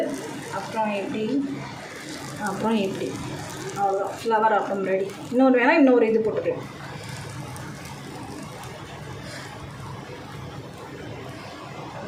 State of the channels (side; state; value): both; identical; correlation 1.00